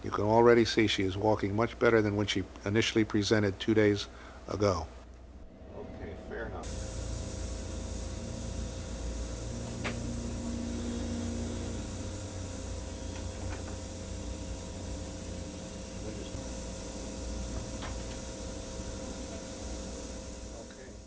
You can already see she is walking much better than when she initially presented 2 days ago. Okay, fair enough.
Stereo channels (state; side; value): identical; both; correlation 1.00